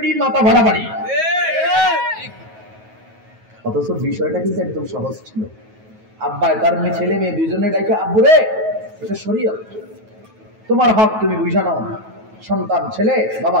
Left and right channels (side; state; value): left; late; 9.3 ms